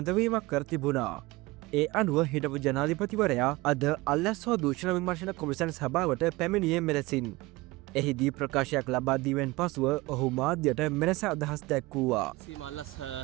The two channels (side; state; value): left; quieter; 21.3 dB